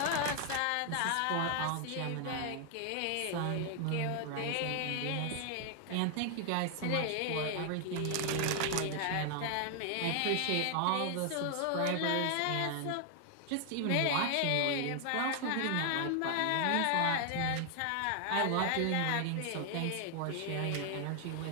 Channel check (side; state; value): both; different; correlation 0.00